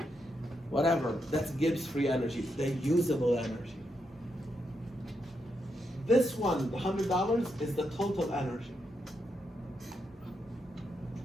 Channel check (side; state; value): both; normal; correlation 0.82